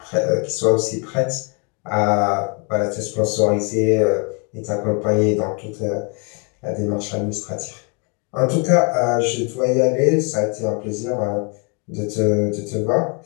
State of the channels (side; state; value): right; quieter; 35.3 dB